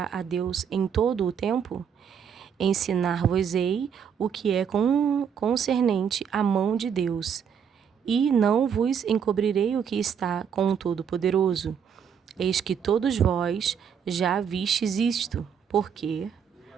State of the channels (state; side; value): quieter; left; 7.5 dB